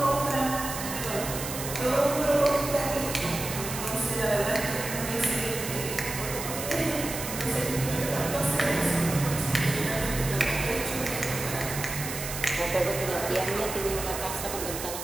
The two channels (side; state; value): right; noise; hiss, 7 dB below the sound